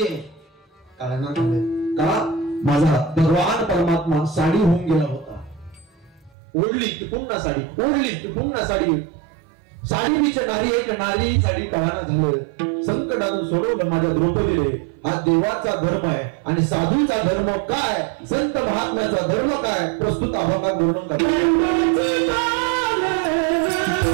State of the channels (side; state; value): left; drops out; at 6.4 s